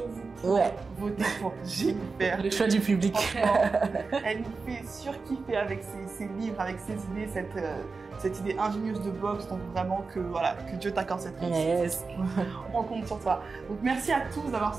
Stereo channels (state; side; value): quieter; left; 4.3 dB